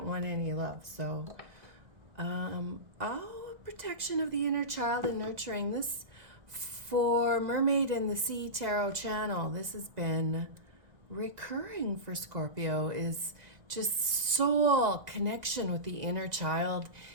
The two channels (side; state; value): left; late; 2.0 ms